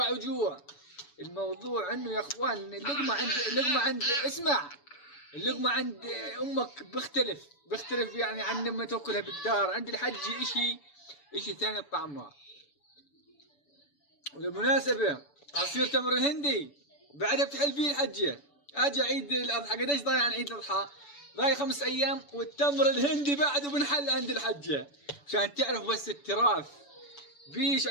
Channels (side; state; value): right; late; 7.0 ms